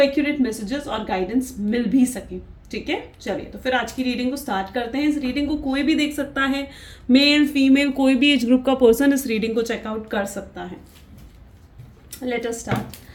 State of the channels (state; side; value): identical; both; correlation 1.00